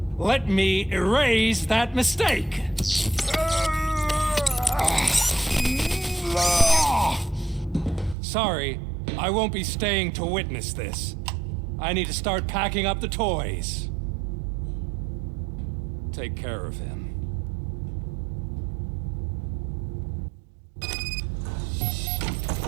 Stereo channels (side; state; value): left; drops out; at 8.2 s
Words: Let me erase that mistake. Sorry, I won't be staying to witness this. I need to start packing up the toys. Take care of him.